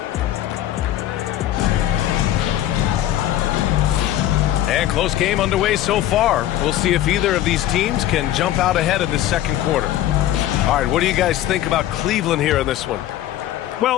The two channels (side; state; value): right; quieter; 13.0 dB